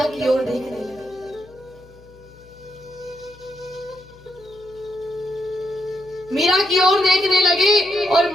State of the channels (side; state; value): left; noise; hum, 24 dB below the sound